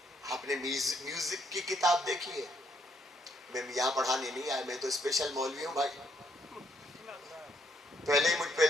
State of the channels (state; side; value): normal; both; correlation 0.71